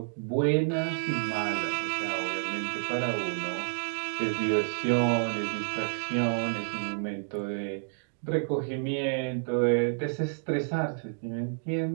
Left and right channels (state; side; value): silent; left; digital silence